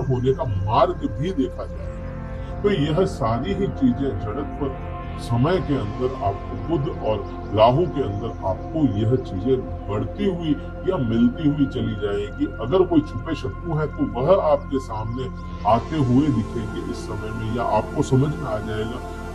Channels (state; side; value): identical; both; correlation 1.00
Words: होने का मार्ग भी देखा जाएगा। तो यह सारी ही चीजें जड़त्व समय के अंदर आपको बुध और राहु के अंदर आपको यह चीजें बढ़ती हुई या मिलती हुई चली जाएगी। अगर कोई छुपे शत्रु है तो वह आपके सामने आते हुए दिखेंगे इस समय में, या आपको समझ में आ जाएगा